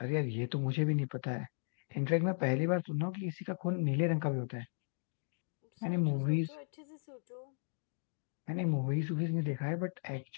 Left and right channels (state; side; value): silent; right; digital silence